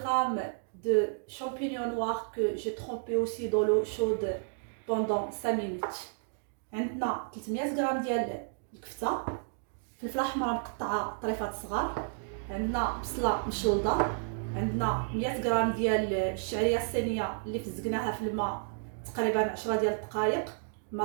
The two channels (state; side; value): silent; left; digital silence